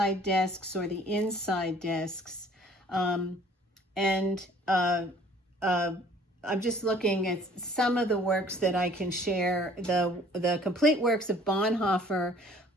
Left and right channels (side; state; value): both; normal; correlation 0.54